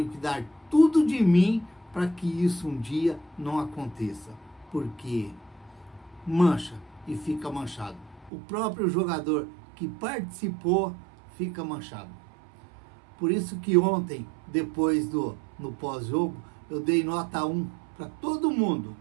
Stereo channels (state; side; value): drops out; left; at 8.3 s